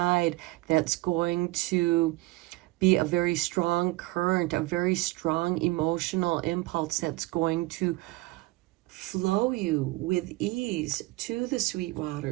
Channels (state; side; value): quieter; left; 21.2 dB